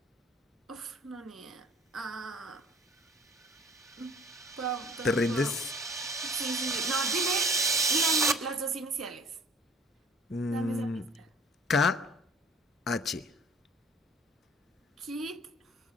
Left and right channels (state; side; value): normal; both; correlation 0.50